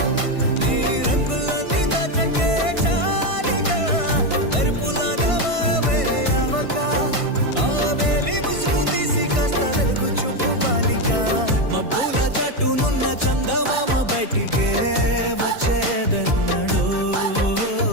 నీ రంగులన్నీ దచకే చాలిక మెరుపులాగా మాయమే అవక ఆ వేలి ముసుగు తీసి కాస్త వెలుగు చూపు బాలిక మబ్బుల చాటునున్న చందమామ బయటికే వచ్చేదన్నాడు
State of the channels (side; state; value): left; late; 1.5 ms